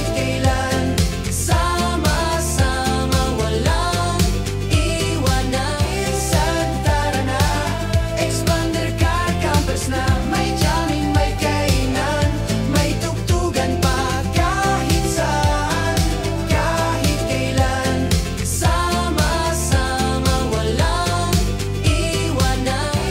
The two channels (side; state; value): both; identical; correlation 1.00